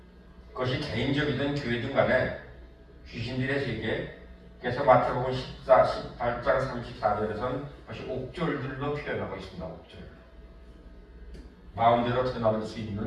그것이 개인적이든 교회든 간에 귀신들의 세계, 그래서 마태복음 18장 34절에서는 그것이 옥졸들로 표현하고 있습니다. 옥졸. 마음대로 드나들 수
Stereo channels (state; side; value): identical; both; correlation 1.00